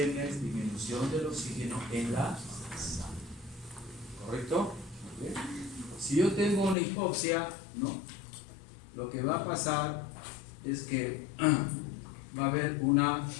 es disminución del oxígeno en la sangre. ¿Correcto? ¿Okay? Si yo tengo una hipoxia, ¿no? Lo que va a pasar es que va a haber una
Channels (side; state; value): right; drops out; at 6.8 s